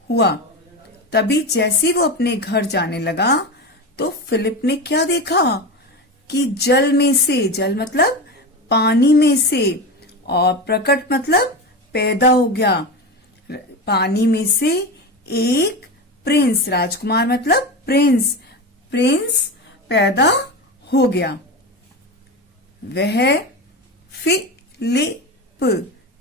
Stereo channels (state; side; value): normal; both; correlation 0.22